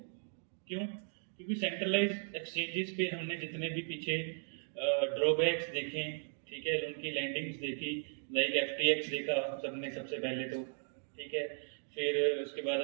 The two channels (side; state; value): left; silent; digital silence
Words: क्यों? क्योंकि सेंट्रलाइज एक्सचेंजेस पे हमने जितने भी पीछे ड्रॉबैक्स देखे, ठीक है, उनकी लैंडिंग्स देखी, लाइक FTX देखा सबने सबसे पहले तो, ठीक है, फिर उसके बाद